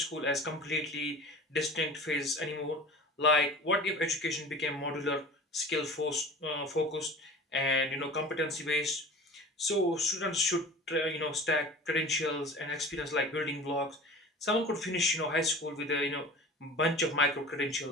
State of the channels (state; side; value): normal; both; correlation 0.38